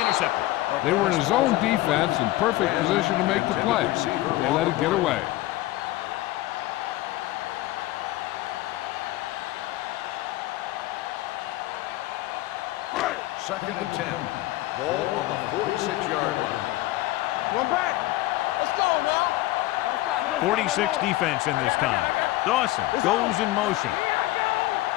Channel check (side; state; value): right; quieter; 17.3 dB